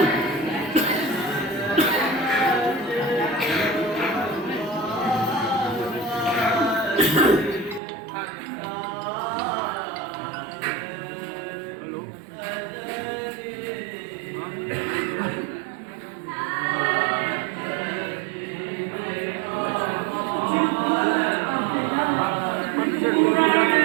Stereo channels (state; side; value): drops out; left; at 7.8 s